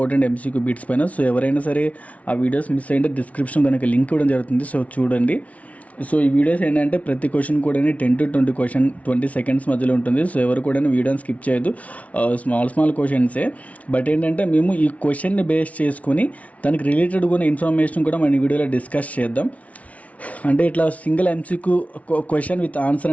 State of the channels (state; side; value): late; right; 0.067 ms